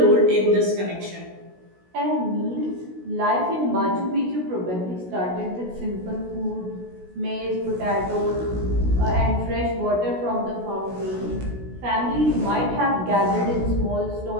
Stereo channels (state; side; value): late; left; 16 ms